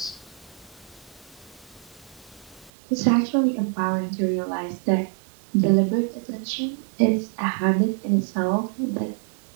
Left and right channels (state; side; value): drops out; left; at 2.7 s